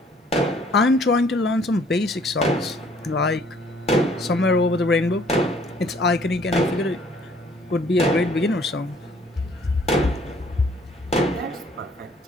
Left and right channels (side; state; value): both; normal; correlation 0.60